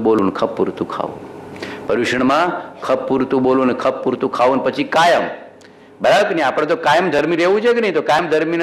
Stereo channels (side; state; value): both; identical; correlation 1.00